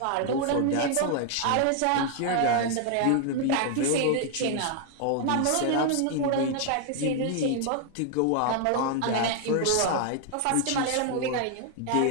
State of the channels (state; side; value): different; both; correlation 0.00